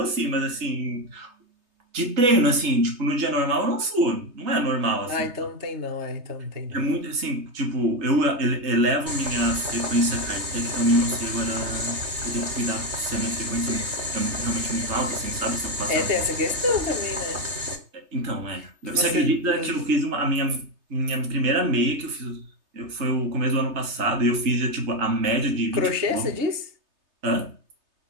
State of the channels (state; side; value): late; left; 3.3 ms